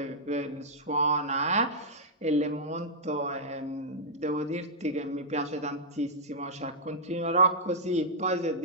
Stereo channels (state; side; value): normal; both; correlation -0.09